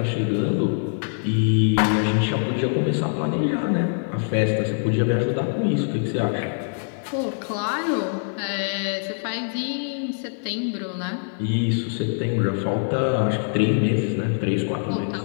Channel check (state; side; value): silent; right; 61 dB below the other